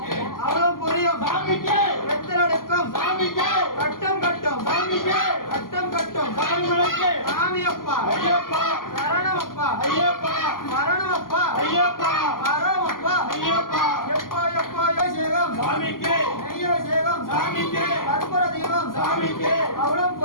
அவளும் புரியும் சாமிக்கு வெத்தலடுக்கம் சாமிக்கு கட்டம் கட்டம் சாமிக்கு கட்டம் கட்டம் சபரிமலைக்கு சாமியப்பா ஐயப்பா சரணமப்பா ஐயப்பா மரணமப்பா ஐயப்பா மரமப்பா ஐயப்பா எப்பா எப்பா சேகம் சாமிக்கு தெய்வசேகம் சாமிக்கு கற்பூர தெய்வம் சாமிக்கு அவளும்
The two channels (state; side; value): late; right; 0.91 ms